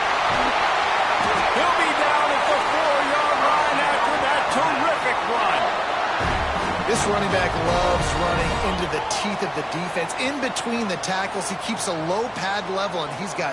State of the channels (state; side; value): identical; both; correlation 1.00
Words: He'll be down at the 4-yard line after that terrific run. This running back loves running into the teeth of the defense. In between the tackles, he keeps a low pad level, and he's